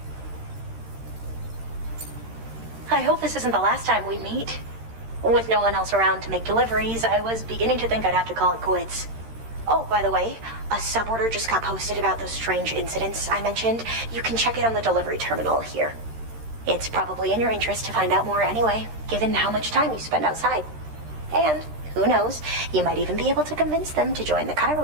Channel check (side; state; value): left; late; 13 ms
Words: I hope this isn't the last time we meet. With no one else around to make deliveries, I was beginning to think I'd have to call it quits. Oh, by the way, a suborder just got posted about those strange incidents I mentioned. You can check it on the delivery terminal here. It's probably in your interest to find out more anyway, given how much time you spend outside. And, who knows, you might even be able to convince them to join the